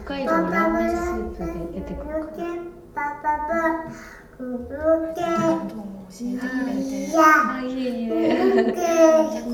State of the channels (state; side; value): identical; both; correlation 1.00